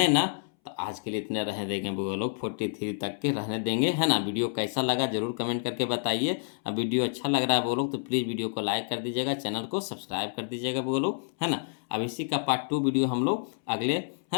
ना। तो आज के लिए इतने रहने देंगे वो लोग, 43 तक के रहने देंगे है ना। वीडियो कैसा लगा जरूर कमेंट करके बताइए। अब वीडियो अच्छा लग रहा है वो लोग तो प्लीज़ वीडियो को लाइक कर दीजिएगा, चैनल को सब्सक्राइब कर दीजिएगा वो लोग है ना। अब इसी का पार्ट 2 वीडियो हम लोग अगले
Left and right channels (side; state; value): right; silent; 59 dB below the other